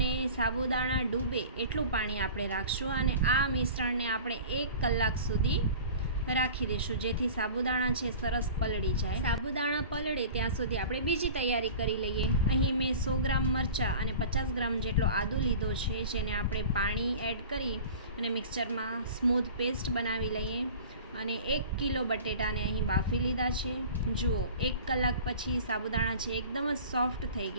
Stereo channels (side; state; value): both; inverted; correlation -0.40